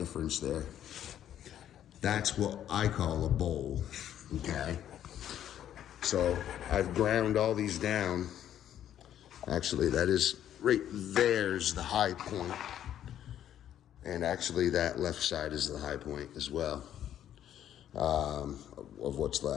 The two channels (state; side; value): quieter; right; 10.8 dB